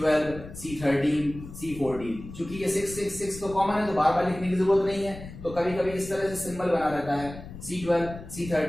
C13, C14। चूंकि ये 666 तो कॉमन है तो बार बार लिखने की जरूरत नहीं है, तो कभी कभी इस तरह से सिंबल बना रहता है C12,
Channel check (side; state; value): left; noise; rumble, 14 dB below the sound